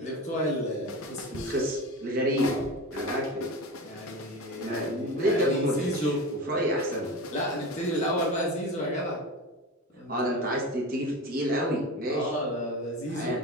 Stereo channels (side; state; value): both; normal; correlation 0.28